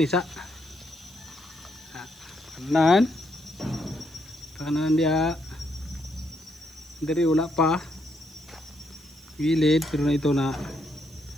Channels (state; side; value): noise; right; hiss, 27 dB below the sound